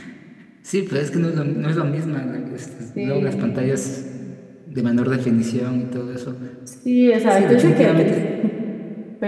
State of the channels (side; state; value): both; identical; correlation 1.00